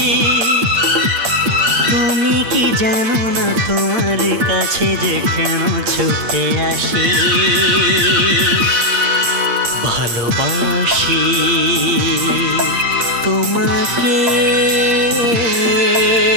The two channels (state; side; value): late; left; 8.6 ms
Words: তুমি কি জানো না তোমার কাছে যে কেন ছুটে আসি? ভালোবাসি তোমাকে,